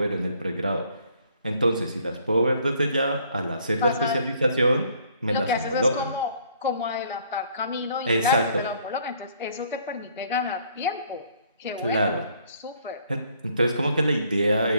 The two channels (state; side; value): inverted; both; correlation -0.63